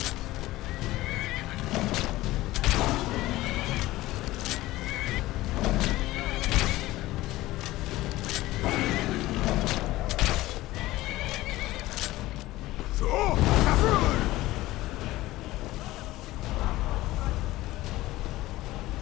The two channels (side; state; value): right; quieter; 17.5 dB